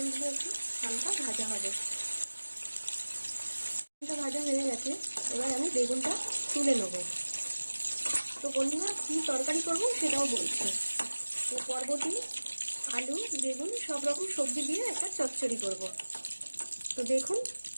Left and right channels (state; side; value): inverted; both; correlation -1.00